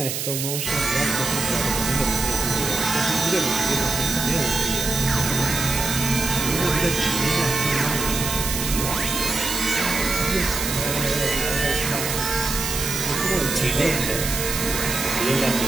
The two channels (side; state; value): right; noise; hiss, 3 dB below the sound